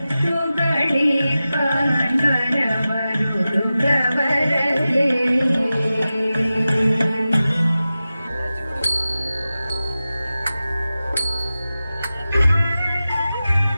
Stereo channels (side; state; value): both; inverted; correlation -0.94